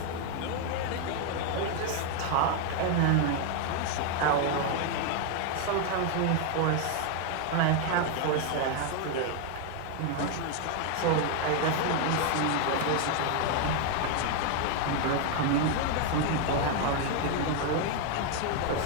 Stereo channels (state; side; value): different; both; correlation 0.00